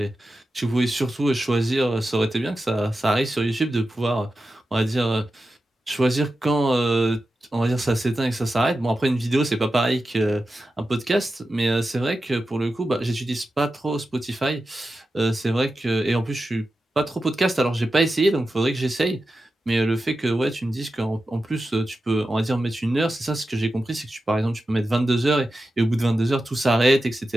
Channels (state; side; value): normal; both; correlation 0.91